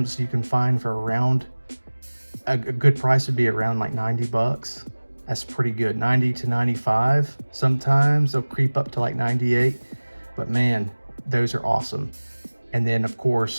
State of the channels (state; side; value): inverted; both; correlation -1.00